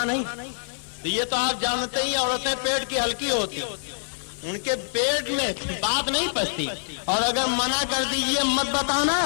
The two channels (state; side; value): silent; right; digital silence